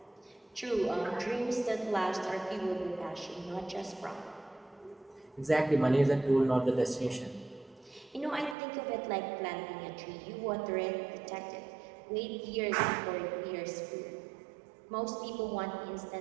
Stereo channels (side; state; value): left; drops out; at 8.6 s